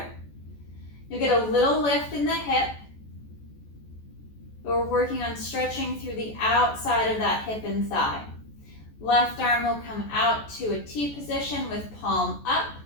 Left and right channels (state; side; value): late; right; 14 ms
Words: You'll get a little lift in the hip. But we're working on stretching through the outside of that hip and thigh. Left arm will come out to a T position with palm up.